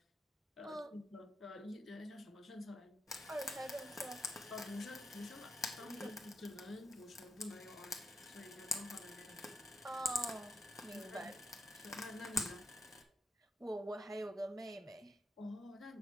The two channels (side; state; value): both; normal; correlation 0.84